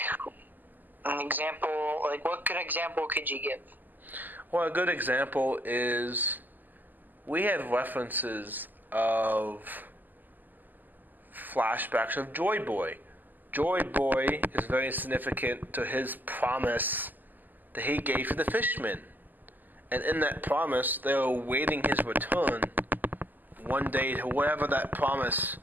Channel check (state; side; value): late; left; 0.086 ms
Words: an example, like what good example could you give? Well, a good example is we have references of flashbacks of Joy Boy. Joy Boy is very significant to his promise that he gave to the fishmen. And in that promise, they were awaiting his return one day to whatever that promise